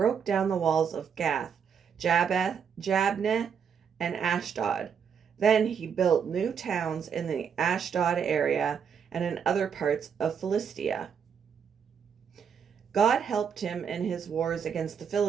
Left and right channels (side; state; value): left; quieter; 7.2 dB